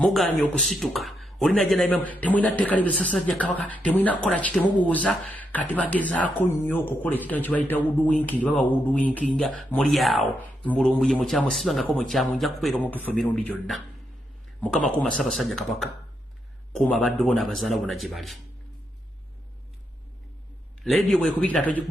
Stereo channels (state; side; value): normal; both; correlation 0.81